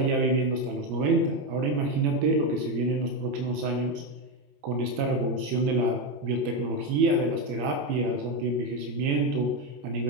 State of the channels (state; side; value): late; left; 21 ms